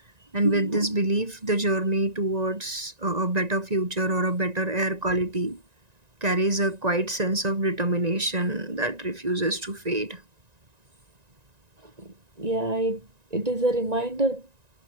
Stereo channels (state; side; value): late; left; 1.9 ms